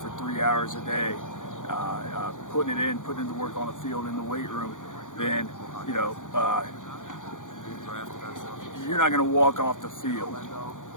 3 hours a day, putting in the work on the field in the weight room, then you know, you're not going to walk off the field,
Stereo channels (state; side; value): late; right; 0.87 ms